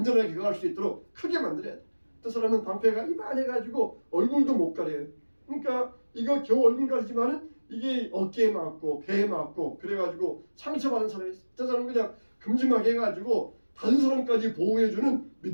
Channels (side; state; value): both; inverted; correlation -1.00